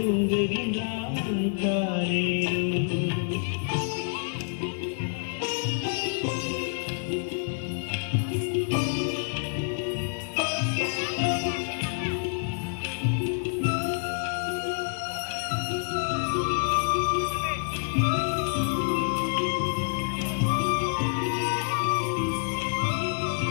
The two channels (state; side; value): silent; right; 60 dB below the other